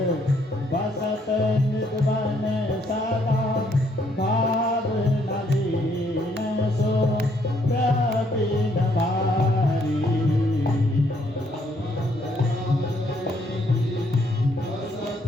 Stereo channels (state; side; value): normal; both; correlation 0.69